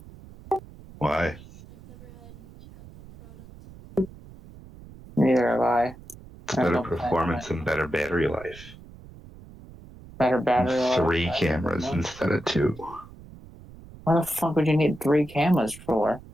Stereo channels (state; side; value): noise; right; rumble, 19 dB below the sound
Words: Why? Neither have I. It's I better don't plan on performance it. and better battery life. Better battery life. 3 I cameras don't know. instead of 2. What the fuck would you need 3 cameras for?